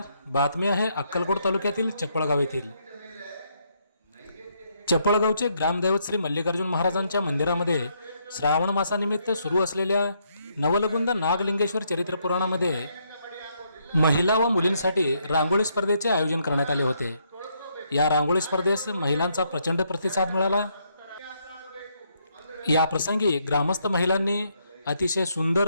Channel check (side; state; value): both; inverted; correlation -0.74